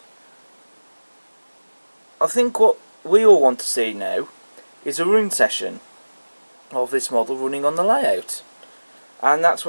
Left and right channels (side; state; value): both; inverted; correlation -1.00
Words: I think what we all want to see now is a run session of this model running on the layout, and that's